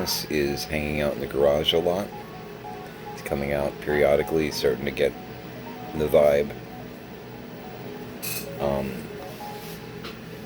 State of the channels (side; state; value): both; identical; correlation 1.00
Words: is hanging out in the garage a lot. He's coming out periodically, starting to get the vibe. I'm